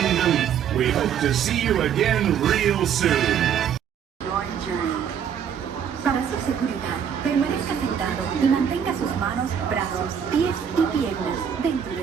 we hope to see you again real soon. Your journey. Para su seguridad, permanezca sentado y mantenga sus manos, brazos, pies y piernas dentro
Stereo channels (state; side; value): quieter; left; 8.3 dB